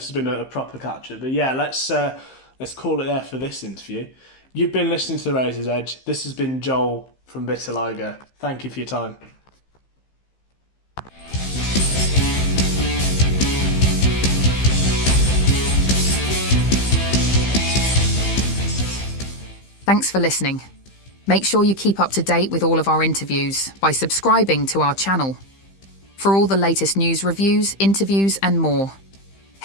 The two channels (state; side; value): late; right; 15 ms